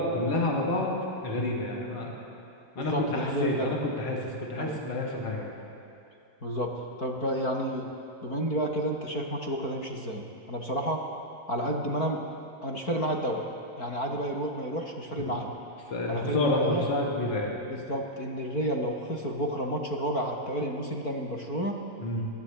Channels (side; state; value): right; late; 4.5 ms